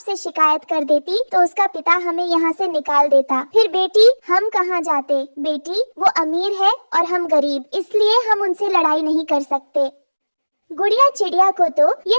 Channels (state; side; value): inverted; both; correlation -1.00